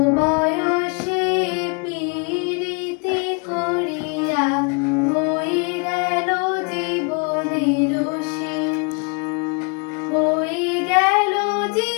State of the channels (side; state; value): right; quieter; 35.1 dB